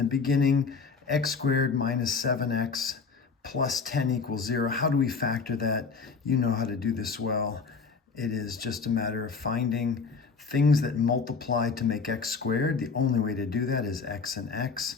beginning. X squared minus 7x plus 10 equals 0. How do we factor that? You know how to do this well. It is just a matter of finding things that multiply to make x squared. The only way to do that is x and x.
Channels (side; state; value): right; quieter; 5.1 dB